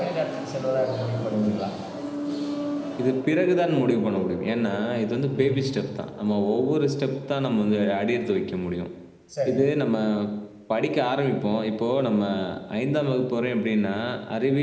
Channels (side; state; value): both; identical; correlation 1.00